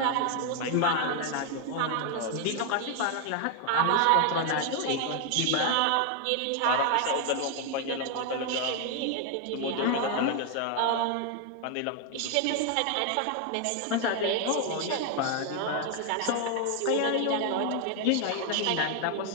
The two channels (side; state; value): both; different; correlation 0.00